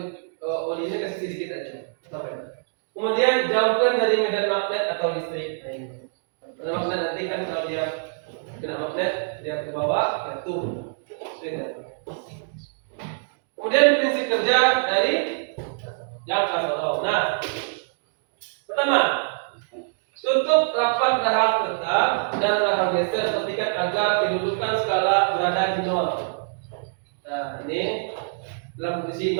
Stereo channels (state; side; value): silent; left; digital silence